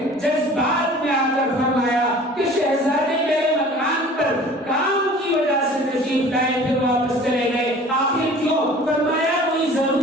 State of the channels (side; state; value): both; normal; correlation 0.46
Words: جذبات میں آ کر فرمایا کہ شہزادے میرے مکان پر کام کی وجہ سے تشریف لائے پھر واپس چلے گئے, آخر کیوں؟ فرمایا کوئی